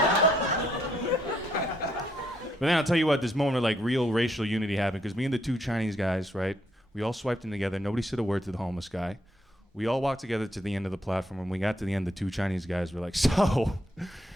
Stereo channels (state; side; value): normal; both; correlation 0.74